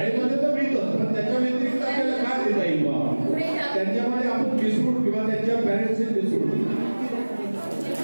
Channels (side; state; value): both; inverted; correlation -1.00